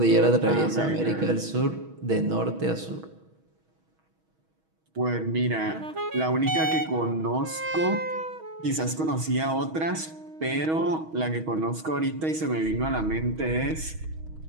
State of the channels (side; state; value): left; late; 6.3 ms